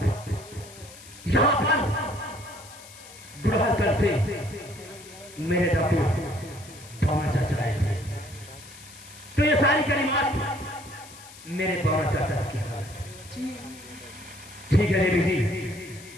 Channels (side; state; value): left; noise; hiss, 18 dB below the sound